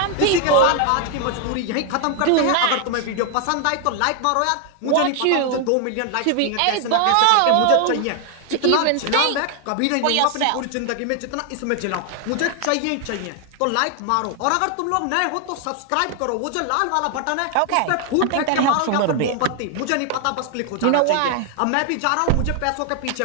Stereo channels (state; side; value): different; both; correlation 0.00